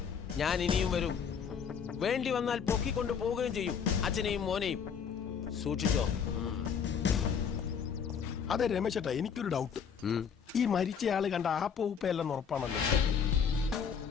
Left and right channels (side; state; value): right; quieter; 7.0 dB